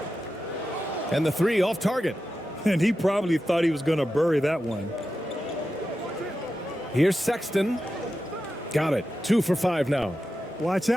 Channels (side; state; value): both; normal; correlation 0.91